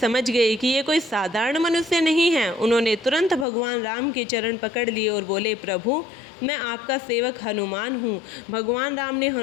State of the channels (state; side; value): drops out; right; at 3.5 s